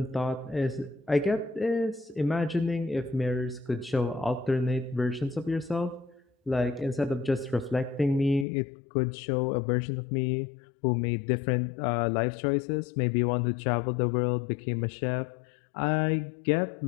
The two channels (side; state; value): right; drops out; at 8.5 s